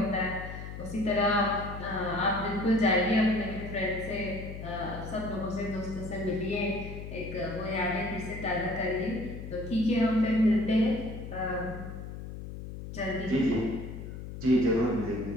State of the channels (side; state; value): left; noise; hum, 9 dB below the sound